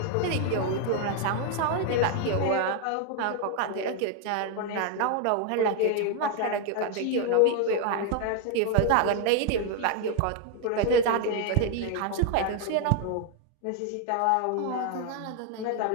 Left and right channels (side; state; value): both; different; correlation 0.00